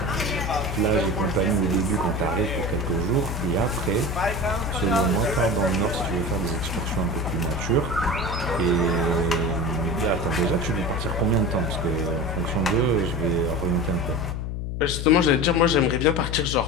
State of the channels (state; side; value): noise; left; hum, 4 dB below the sound